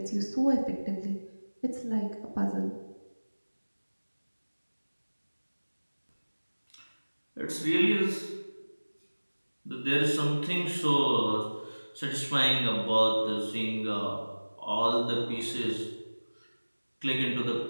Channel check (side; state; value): both; inverted; correlation -1.00